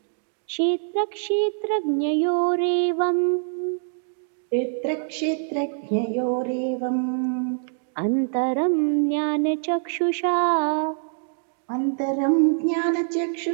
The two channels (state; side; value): silent; left; digital silence